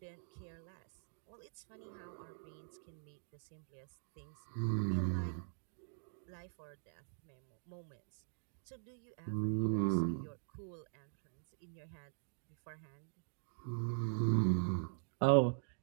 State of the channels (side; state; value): left; silent; digital silence